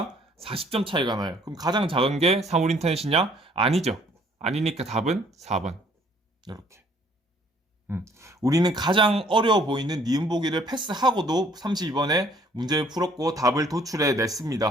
40점 차이가 나요. 그럼 가장 작은 게 사물인터넷이냐? 아니죠. 아니니까 답은 4번. 이렇게. 우리는 가장 어려워 보이는 니은 보기를 패스하고도 32번에 문제를 풀었고 답을 도출해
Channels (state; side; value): normal; both; correlation 0.60